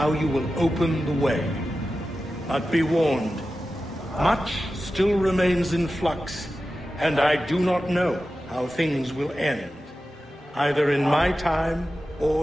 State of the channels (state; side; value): normal; both; correlation 0.93